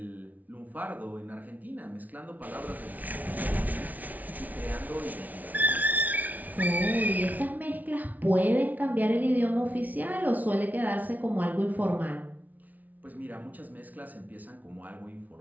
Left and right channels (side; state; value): left; late; 0.076 ms